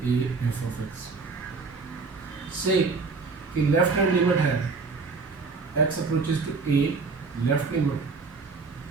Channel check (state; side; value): quieter; left; 4.4 dB